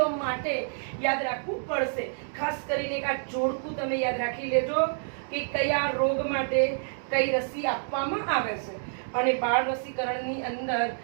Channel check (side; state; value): left; silent; digital silence